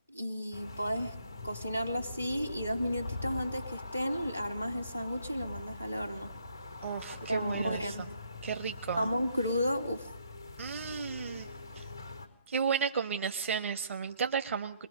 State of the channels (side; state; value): both; inverted; correlation -0.69